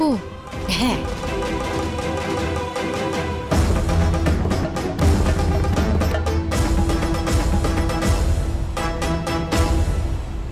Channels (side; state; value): both; identical; correlation 1.00